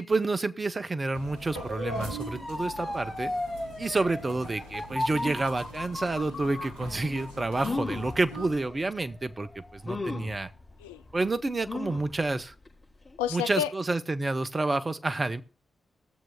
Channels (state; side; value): normal; both; correlation 0.90